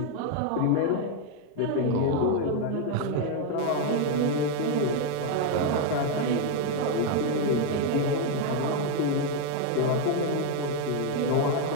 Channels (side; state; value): both; different; correlation 0.01